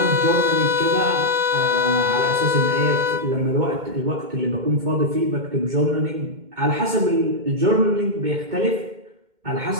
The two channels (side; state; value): left; late; 2.1 ms